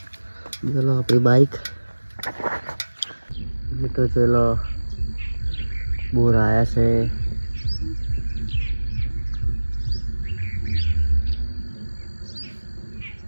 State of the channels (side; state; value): both; inverted; correlation -1.00